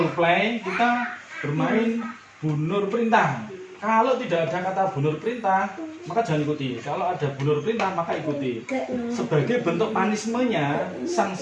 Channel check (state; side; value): identical; both; correlation 1.00